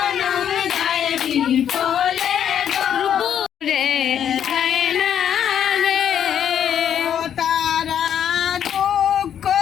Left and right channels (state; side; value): quieter; right; 9.3 dB